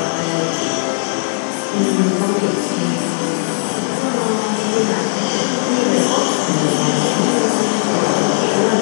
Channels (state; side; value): silent; right; digital silence